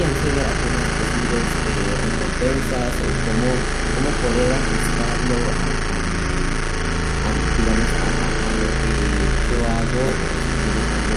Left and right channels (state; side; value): identical; both; correlation 1.00